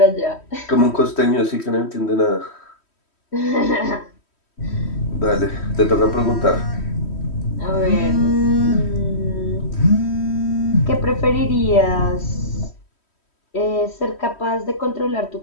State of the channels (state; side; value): late; right; 3.1 ms